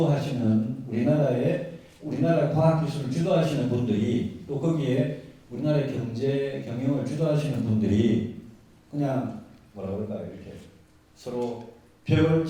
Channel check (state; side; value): identical; both; correlation 1.00